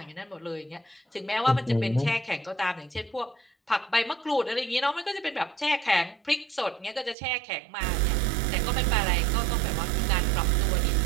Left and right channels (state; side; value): drops out; left; at 7.2 s